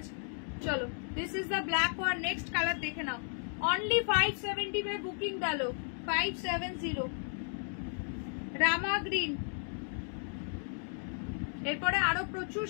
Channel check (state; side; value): silent; right; 55 dB below the other